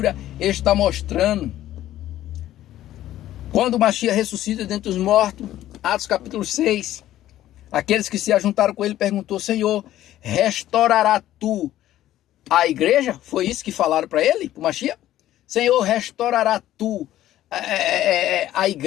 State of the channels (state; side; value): quieter; right; 13.4 dB